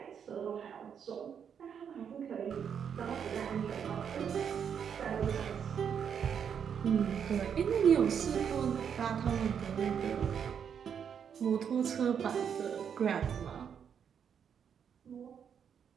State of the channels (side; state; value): left; quieter; 7.7 dB